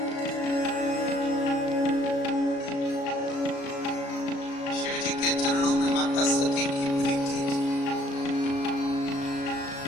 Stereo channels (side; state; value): right; late; 36 ms